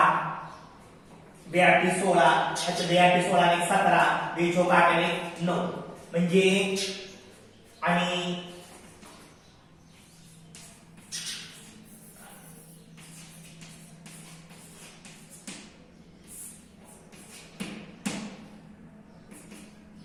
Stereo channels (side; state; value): both; identical; correlation 1.00